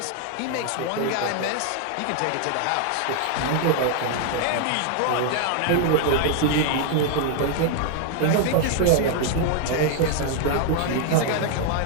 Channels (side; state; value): both; different; correlation 0.00